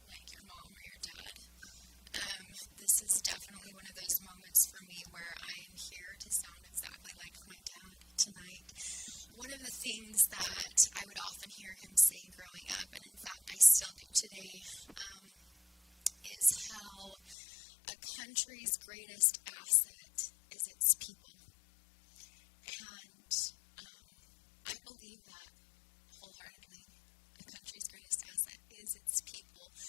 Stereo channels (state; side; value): drops out; right; at 17.4 s